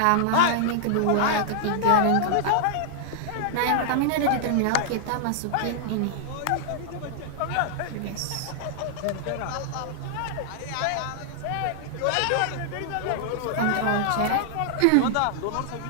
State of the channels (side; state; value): both; different; correlation -0.01